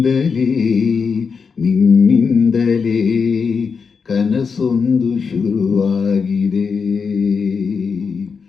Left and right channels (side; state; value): right; quieter; 5.6 dB